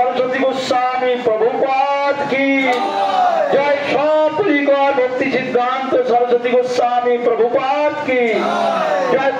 गोस्वामी प्रभुपाद की जय। सपरिकर भक्ति सिद्धांत सरस्वती गोस्वामी प्रभुपाद की जय।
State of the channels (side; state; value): both; identical; correlation 1.00